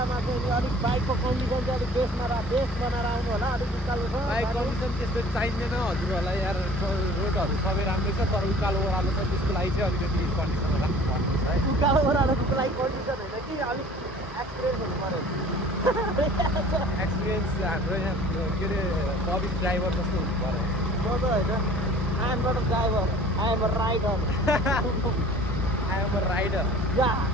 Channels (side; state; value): both; normal; correlation 0.48